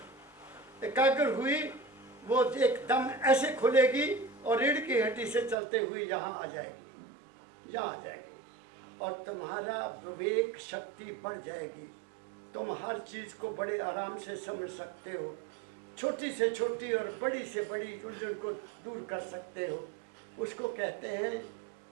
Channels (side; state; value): left; drops out; at 5.6 s